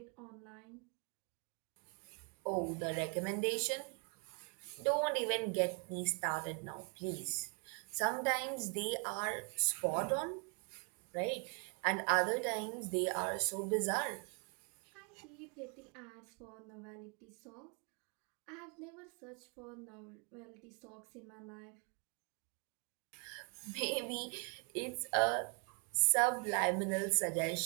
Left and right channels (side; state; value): left; quieter; 37.8 dB